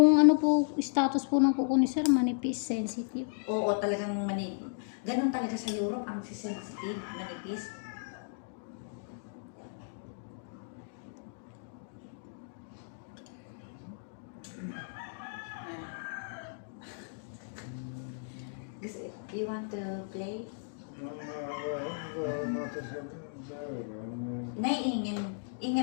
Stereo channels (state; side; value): silent; right; digital silence